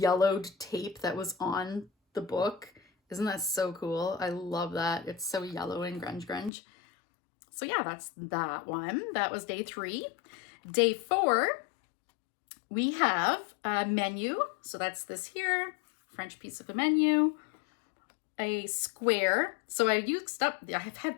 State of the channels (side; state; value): right; drops out; at 6.5 s